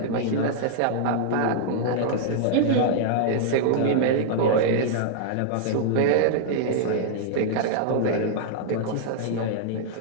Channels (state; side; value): different; both; correlation -0.01